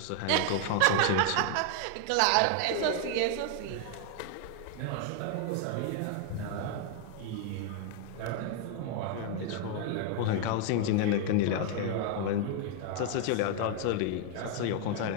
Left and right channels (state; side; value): different; both; correlation 0.00